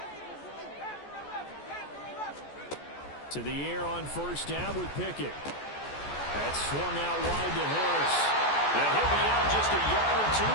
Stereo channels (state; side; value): late; right; 14 ms